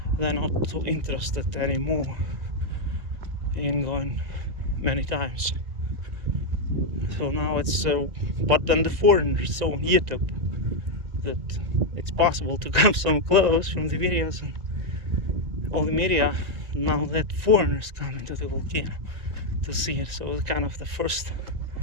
they're not so interested anymore in going many times. So now it's but then the foreigners saw on YouTube that it's possible to come so close from the videos and all the media. Now that foreigners come into the volcano to see it, so it's kind of the first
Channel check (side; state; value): left; late; 1.9 ms